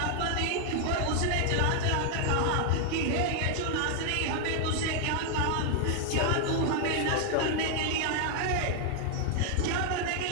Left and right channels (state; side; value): different; both; correlation 0.00